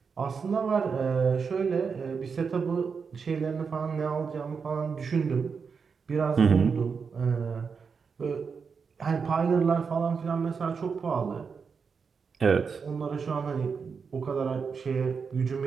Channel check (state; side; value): quieter; left; 5.7 dB